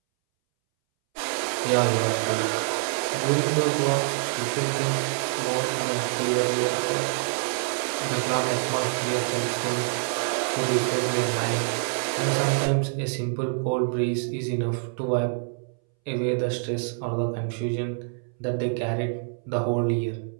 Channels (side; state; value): left; silent; 61 dB below the other